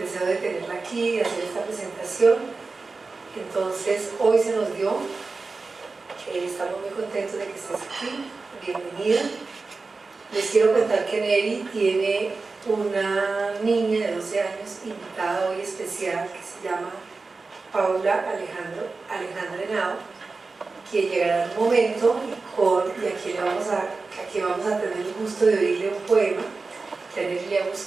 de tenerla aquí, de hacer esta presentación. Entonces, hoy se nos dio. Estamos muy contentos de que estés aquí. Bienvenida. Les quiero contar que Neri tiene una niña de 12 años invitada hoy especial que se llama Paula Alejandra Henao, que llegará en un momento y aquí vamos a tener el gusto de oírle un poema que a Neri le ha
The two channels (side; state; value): left; quieter; 4.0 dB